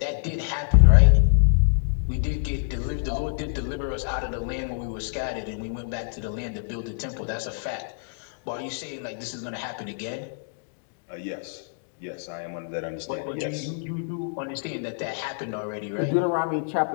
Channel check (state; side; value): silent; right; digital silence